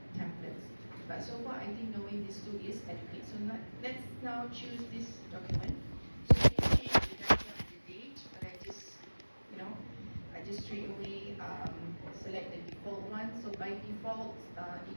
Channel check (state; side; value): inverted; both; correlation -1.00